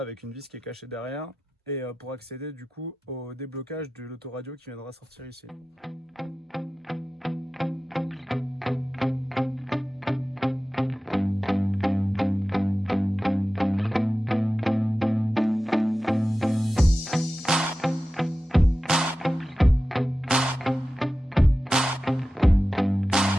une vis qui est cachée derrière. Et pour accéder du coup au déblocage de l'autoradio qui viendra sortir ici.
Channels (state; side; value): normal; both; correlation 0.94